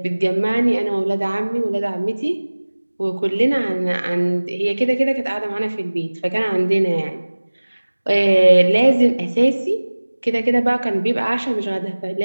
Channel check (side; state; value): both; inverted; correlation -1.00